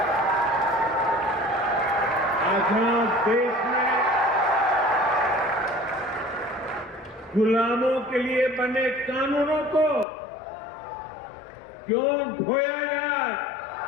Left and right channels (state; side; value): drops out; right; at 10.1 s